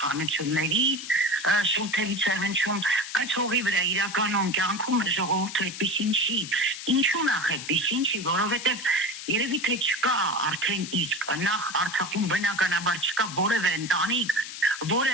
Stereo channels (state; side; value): noise; left; hiss, 10 dB below the sound